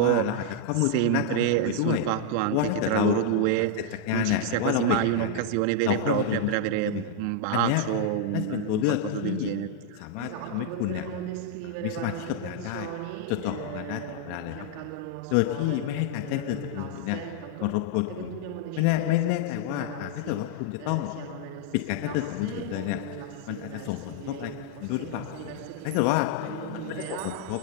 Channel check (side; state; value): both; different; correlation -0.01